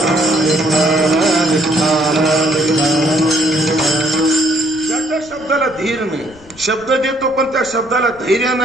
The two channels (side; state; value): left; noise; rumble, 24 dB below the sound